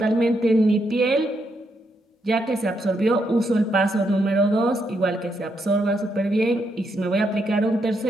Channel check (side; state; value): both; normal; correlation 0.79